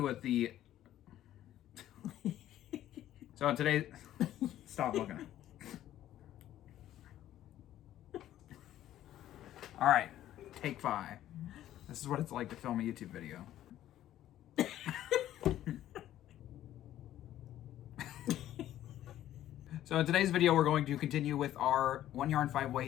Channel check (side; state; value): right; quieter; 12.7 dB